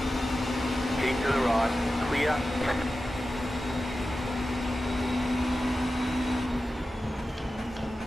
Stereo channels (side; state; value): both; normal; correlation 0.93